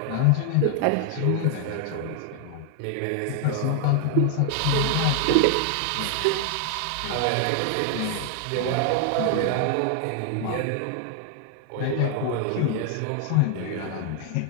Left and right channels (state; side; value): different; both; correlation 0.00